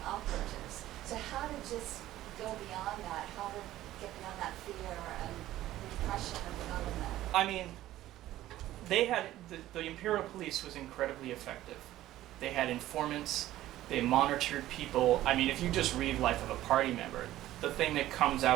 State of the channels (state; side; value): quieter; left; 14.5 dB